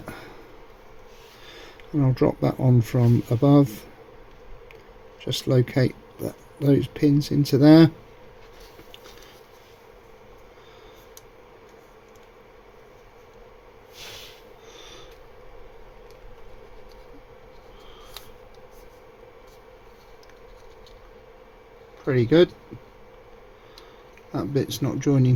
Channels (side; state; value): both; identical; correlation 1.00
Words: And I'll drop that on from above. Just locate those pins into there. Pretty good. That bit's not joining